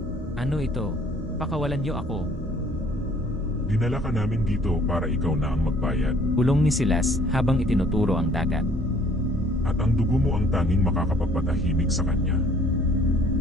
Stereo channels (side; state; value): both; normal; correlation 0.58